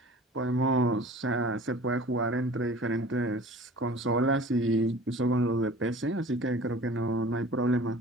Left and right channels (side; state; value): both; normal; correlation 0.44